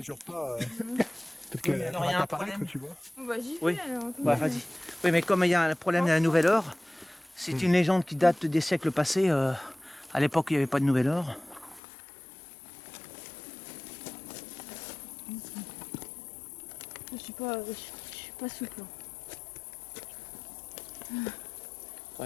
pas, peut-être qu'elle mais alors, va il y a un apparaître, problème. tu vois. On va j'y Oui. vais alors. attends. Bah, vas-y. Oui, mais comme il y a un problème de la nouvelle heure, c'est une légende qui date des siècles passés. À l'époque, il n'y avait pas de nouvelle heure. Je suis pas souple.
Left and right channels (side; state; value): right; drops out; at 11.8 s